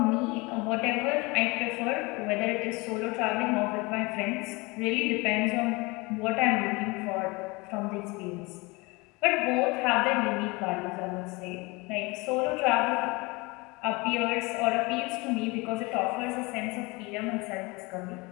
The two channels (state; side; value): quieter; right; 25.4 dB